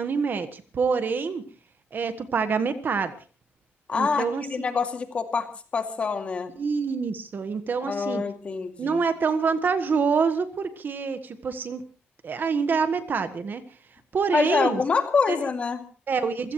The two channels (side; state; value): both; normal; correlation 0.76